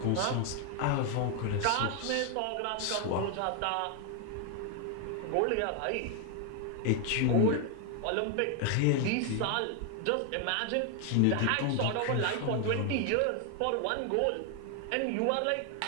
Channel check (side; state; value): both; different; correlation 0.00